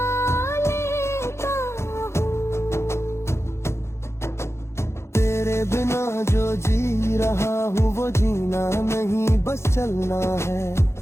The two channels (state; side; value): late; right; 0.13 ms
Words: लेता हूँ। तेरे बिना जो जी रहा हूँ वो जीना नहीं बस चलना है।